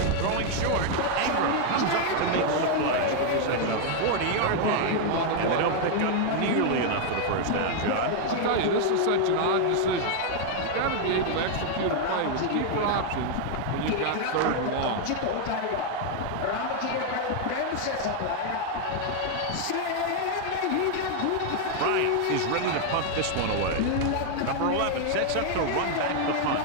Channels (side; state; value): both; different; correlation 0.00